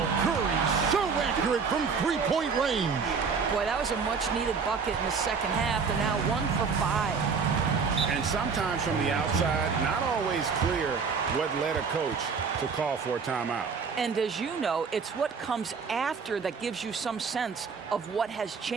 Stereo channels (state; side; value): quieter; left; 5.5 dB